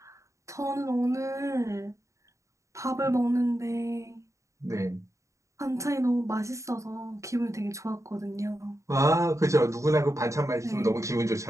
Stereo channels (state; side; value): late; left; 0.15 ms